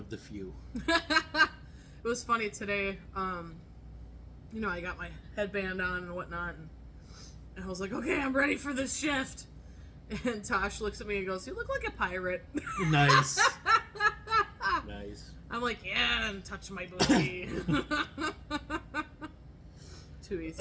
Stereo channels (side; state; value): both; identical; correlation 1.00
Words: the few. It was funny today. I got my headband on and whatnot, and I was like, okay, I'm ready for this shift. And Tosh looks at me and goes, you look like a pirate. Nice. Nice. I'm like, yeah, and touch my booty. Too